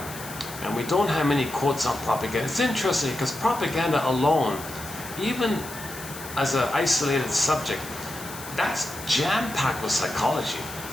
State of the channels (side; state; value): left; noise; hiss, 13 dB below the sound